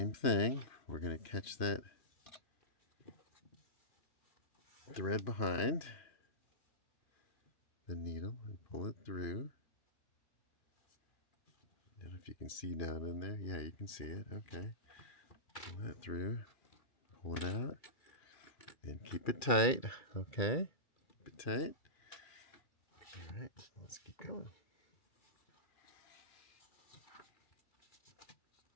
thing, we're gonna catch that thread behind the needle and pull it through. I don't know if you can see down in there. Yeah, you can see it. Okay, pull that through, pull it out, and keep it tight. Okay, keep it tight. All right, let's keep going.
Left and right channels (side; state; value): right; late; 2.3 ms